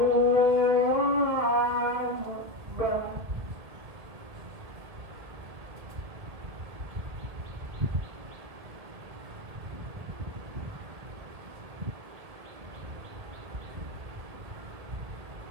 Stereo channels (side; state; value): left; late; 1.6 ms